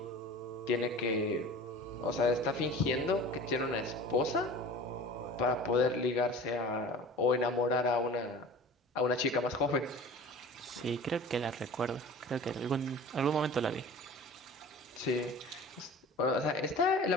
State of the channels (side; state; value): both; normal; correlation 0.40